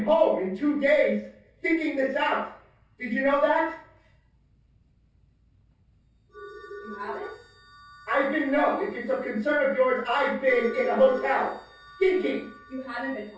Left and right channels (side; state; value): both; identical; correlation 1.00